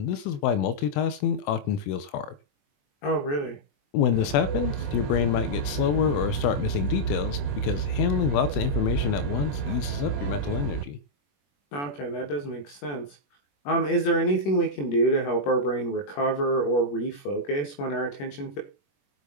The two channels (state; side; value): late; right; 21 ms